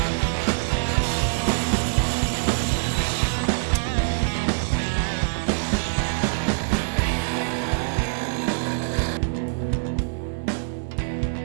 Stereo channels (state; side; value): silent; left; digital silence